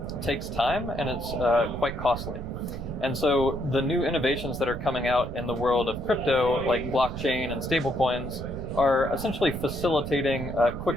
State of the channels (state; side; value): noise; right; rumble, 8 dB below the sound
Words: takes time, and it's quite costly. And so the new innovations that are coming out in the world of crypto, like blockchain and stablecoins, are essentially facilitating